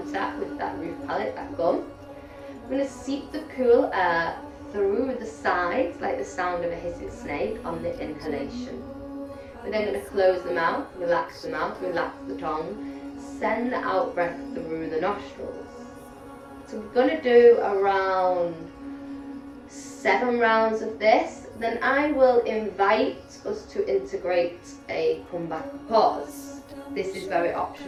with that roof palate, that gum. I'm going to seep the cool air through the sides like the sound of a hissing snake on the inhalation. We're then going to close the mouth, relax the tongue, send the out breath through the nostrils. So we're going to do around 7 rounds of this. Then I will invite us to integrate a comeback pause. This is very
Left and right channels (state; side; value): identical; both; correlation 1.00